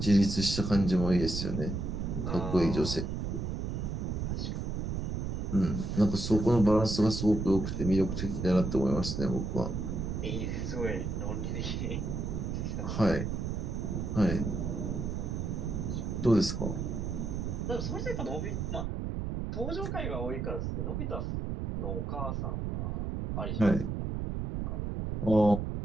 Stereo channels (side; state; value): right; noise; rumble, 2 dB below the sound